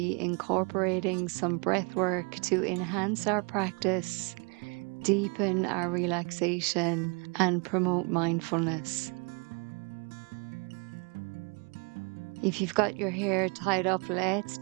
incorporating some breath work to enhance our practice, deepen our relaxation, and promote mindfulness. If you've got your hair tied up, let's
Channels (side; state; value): left; quieter; 33.9 dB